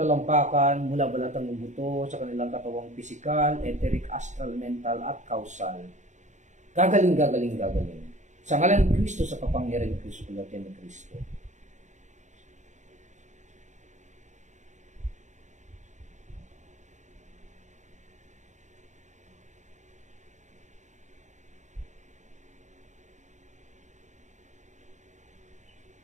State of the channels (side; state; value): left; late; 0.35 ms